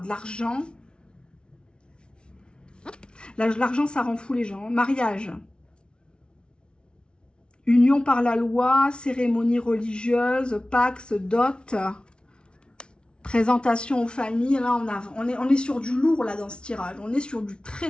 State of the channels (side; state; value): right; late; 0.056 ms